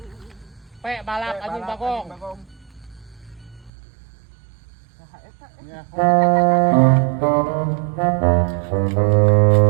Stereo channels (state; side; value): drops out; left; at 3.7 s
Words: Pe balak anjing bagong.